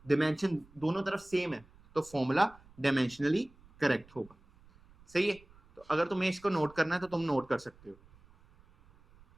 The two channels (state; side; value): noise; right; rumble, 26 dB below the sound